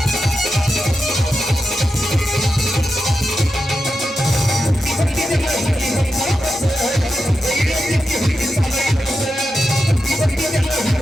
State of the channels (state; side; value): normal; both; correlation 0.89